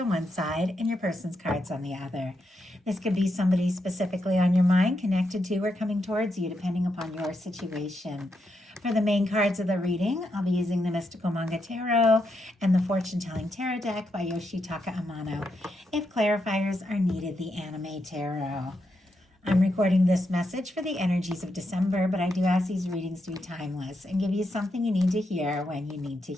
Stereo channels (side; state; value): both; normal; correlation 0.83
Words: on one side and your person's cards on the other. This could be somebody specifically on your mind, connected to or coming towards you, depending upon your situation. For the main cards of the reading, I'll be using the Mystical Manga Tarot and the Fortune Telling Tarot deck by Yoshitaka Amano. If clarifiers are needed, the Anime Tarot. I'm recording this message for the energies of December, but I do ask these readings to be timeless and give you something you need to hear when you need to